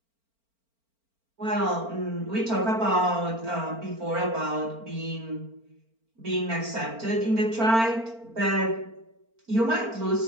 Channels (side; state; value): left; late; 4.4 ms